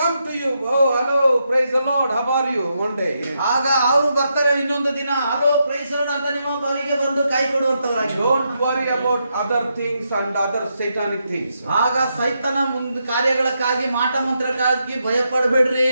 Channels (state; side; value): inverted; both; correlation -0.82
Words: to you. Oh, hello, praise the Lord. How are you? One day. ಆಗ ಅವರು ಬರ್ತಾರೆ ಇನ್ನೊಂದು ದಿನ. ಹಲೋ ಪ್ರೈಸ್ ಲಾರ್ಡ್ ಅಂತ ನಿಮ್ಮ ಬಾರಿಗೆ ಬಂದು ಕೈ ಕೊಡುವಂತವರಾಗಿ. Don't worry about other things and other satanic things. ಆಗ ಸೈತಾನ ಮುಂದೆ ಕಾರ್ಯಗಳಕ್ಕಾಗಿ ಮಾಟ ಮಂತ್ರಕ್ಕಾಗಿ ಭಯ ಪಡಬೇಡ್ರಿ.